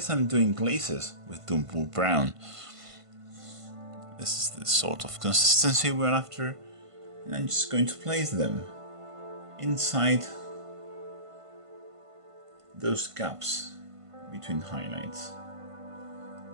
I'm doing glazes with Dumpur Brown. This is the sort of consistency we're after, and I'm just going to place them inside those gaps between highlights.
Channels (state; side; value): late; left; 1.5 ms